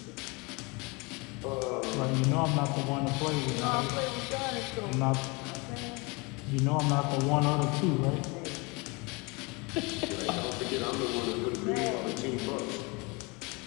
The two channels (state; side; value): quieter; right; 27.9 dB